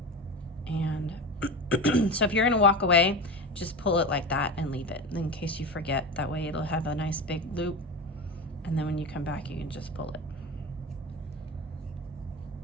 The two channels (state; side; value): normal; both; correlation 0.25